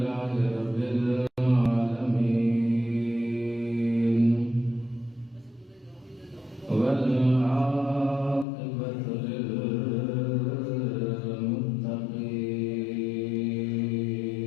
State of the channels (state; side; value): drops out; right; at 8.5 s